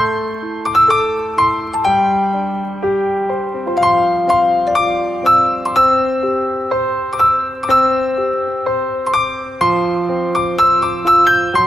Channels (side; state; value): both; normal; correlation 0.88